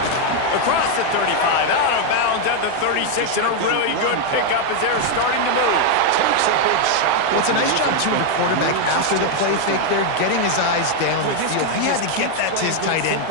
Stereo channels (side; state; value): both; different; correlation 0.01